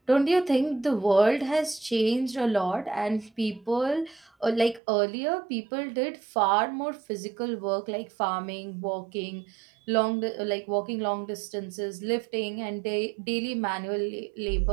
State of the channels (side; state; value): left; drops out; at 4.8 s